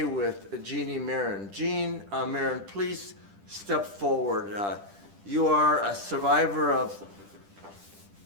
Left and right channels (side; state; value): left; late; 10 ms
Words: with Jeannie Marron. Jean Marron, please step forward. You are a survivor of